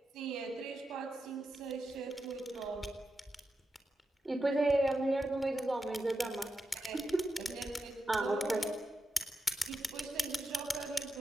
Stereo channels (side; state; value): both; normal; correlation 0.88